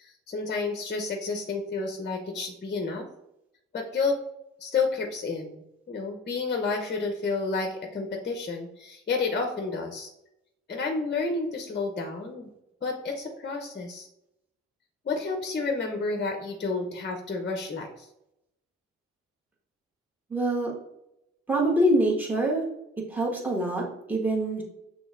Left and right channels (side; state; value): both; normal; correlation 0.43